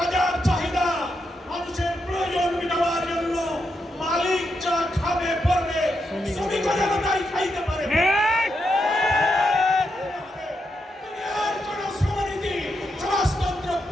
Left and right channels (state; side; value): normal; both; correlation 0.83